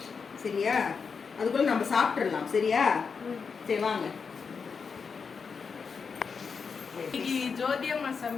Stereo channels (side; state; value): right; quieter; 5.6 dB